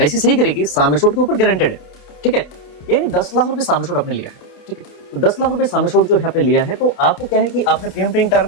सही करेगी सम एश्योर्ड के ऊपर गारंटेड है, ठीक है। यानी 10 लाख रुपए सम एश्योर्ड आपने लिया है, ठीक है। तो 10 लाख रुपए सम एश्योर्ड जो है आपने लिया है, तो आपको क्या है कि आपने प्रीमियम पेइंग टर्म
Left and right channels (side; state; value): right; late; 28 ms